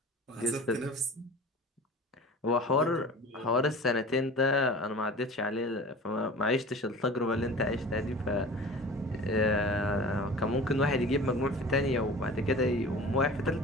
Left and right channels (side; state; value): both; normal; correlation 0.39